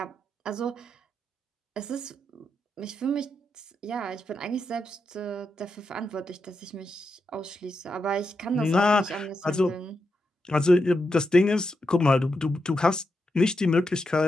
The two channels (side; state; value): both; normal; correlation 0.85